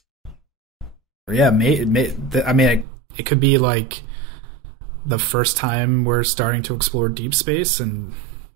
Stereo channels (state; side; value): drops out; left; at 2.9 s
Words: Yeah, it could be like the first time we're starting to explore deep space, and